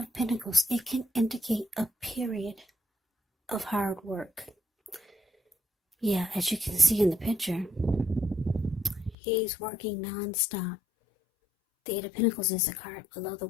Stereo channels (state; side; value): drops out; right; at 9.2 s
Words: Pentacles, it can indicate a period of hard work. Yeah, as you can see in the picture, he's working non-stop. The 8 of Pentacles is a card below the